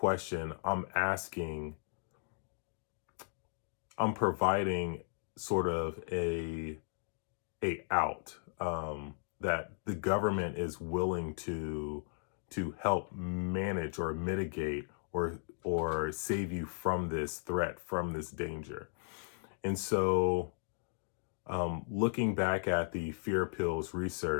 I'm providing sort of a out, that the government is willing to help manage or mitigate or save you from this threat, from this danger. And so, looking back at the fear pills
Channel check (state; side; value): silent; right; digital silence